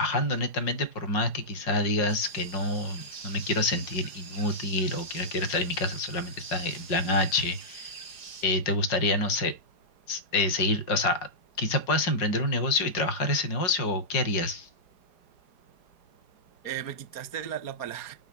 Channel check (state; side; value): late; right; 4.9 ms